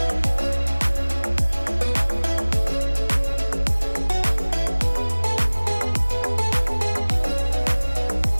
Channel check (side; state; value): both; inverted; correlation -1.00